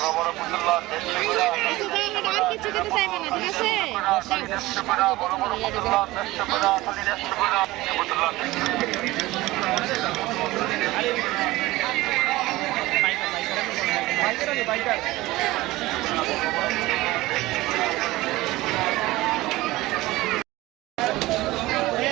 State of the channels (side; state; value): left; quieter; 18.8 dB